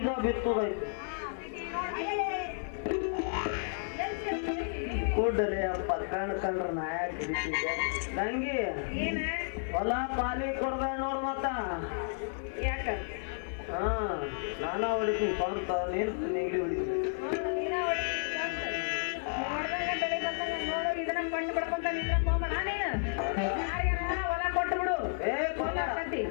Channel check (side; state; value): right; silent; digital silence